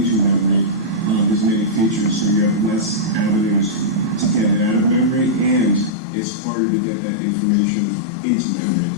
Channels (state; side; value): drops out; right; at 5.9 s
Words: memory as many features, so you have less avenues to get it out of memory, and it's harder to get that information into memory.